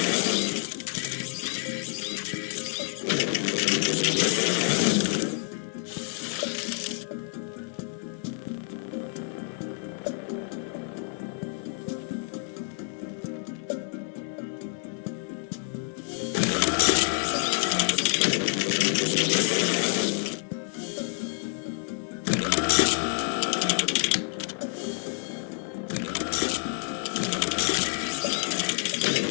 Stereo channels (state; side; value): silent; right; 56 dB below the other